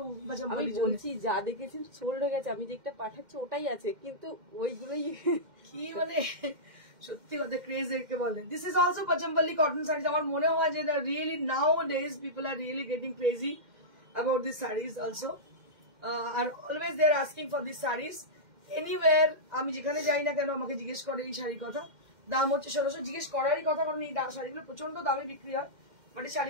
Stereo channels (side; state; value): left; late; 2.1 ms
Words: আমি বলছি যা দেখেছি সোল্ড হয়ে গেছে, আমি যেটা পাঠাচ্ছি ওটাই আছে, কিন্তু ওইগুলোই কি মানে সত্যি কথা ক্রেজ একে বলে। This is also Pochampally cotton saris. আমার মনে হয় যে really nowadays people are really getting crazy about this saris also, আর always they are asking for this saris anywhere. আমি যেখানে যাই না কেন আমাকে জিজ্ঞেস করে এই শাড়ির কথা। দাম হচ্ছে 1600, জিজ্ঞেস করারই কথা, কারণ এই শাড়িগুলো প্রচন্ড দামে বিক্রি হয়। বাট এই